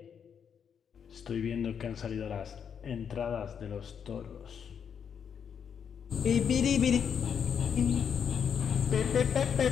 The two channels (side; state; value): right; quieter; 7.5 dB